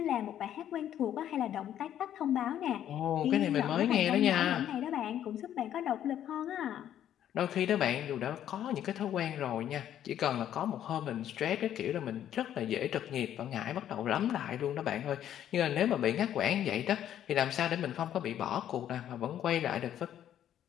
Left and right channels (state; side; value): quieter; right; 10.8 dB